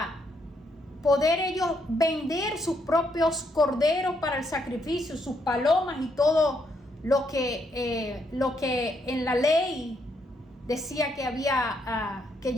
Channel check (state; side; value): normal; both; correlation 0.75